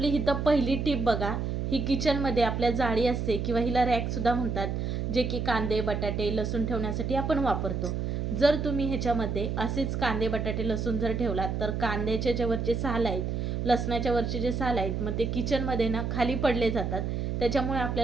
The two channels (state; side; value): noise; right; hum, 1 dB below the sound